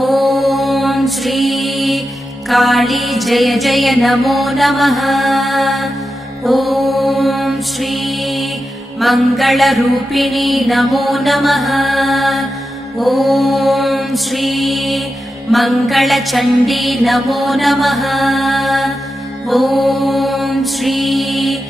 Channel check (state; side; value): normal; both; correlation 0.90